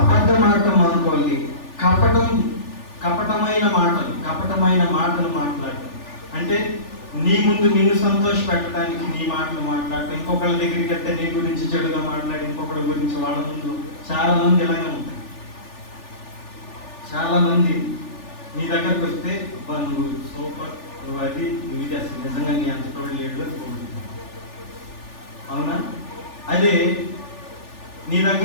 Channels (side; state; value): right; late; 3.4 ms